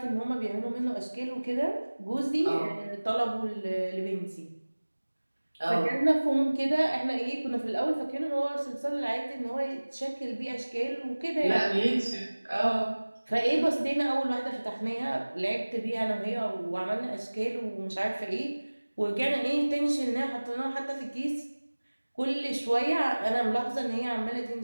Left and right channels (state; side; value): inverted; both; correlation -1.00